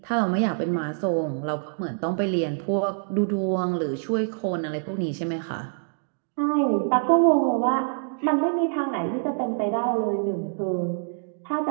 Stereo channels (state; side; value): silent; left; digital silence